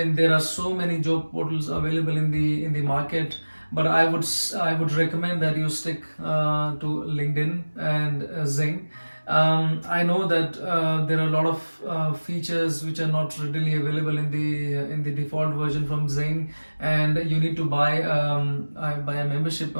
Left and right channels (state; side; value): inverted; both; correlation -1.00